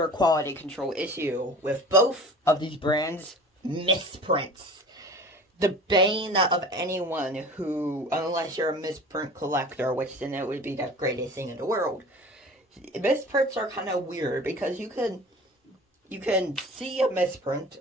quality control issue with both of these brands, misprints. The bane of anyone who, unless you're a misprint collector, which then it would be the greatest thing in the world. Misprints are kind of weird because you can see a misprint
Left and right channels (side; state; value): both; normal; correlation 0.41